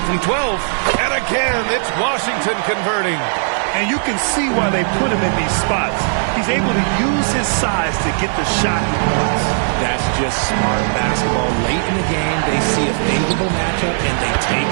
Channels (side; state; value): left; silent; 55 dB below the other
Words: from 12. And again, it's Washington converting. And you can see why they put him in these spots. He's able to use his size to get the shot he wants. That's just smart basketball. Late in the game, they see a favorable matchup, and they take